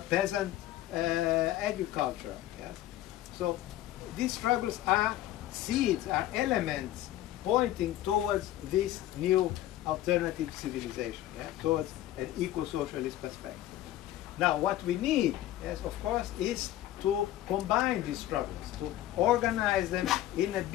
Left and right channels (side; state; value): right; quieter; 13.9 dB